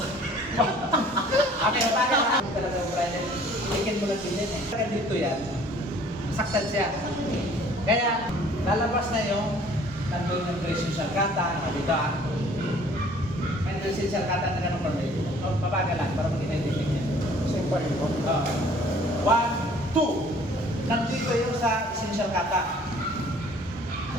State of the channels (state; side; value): normal; both; correlation 0.54